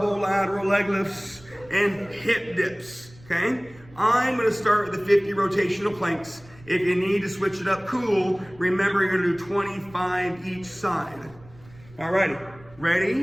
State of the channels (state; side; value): noise; right; rumble, 24 dB below the sound